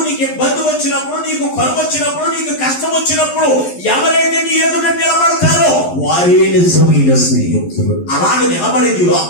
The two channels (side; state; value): right; late; 11 ms